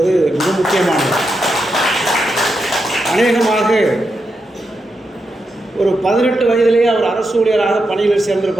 மிக முக்கியமானது. அநேகமாக ஒரு 18 வயதிலேயே அவர் அரசு ஊழியராக பணியில்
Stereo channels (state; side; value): normal; both; correlation 0.86